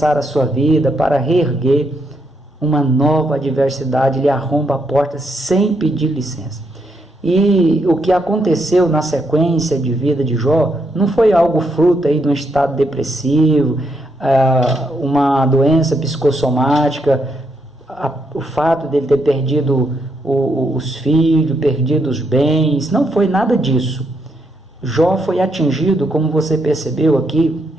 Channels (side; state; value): both; normal; correlation 0.78